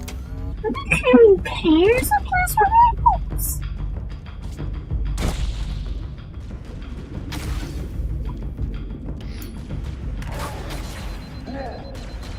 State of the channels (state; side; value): identical; both; correlation 1.00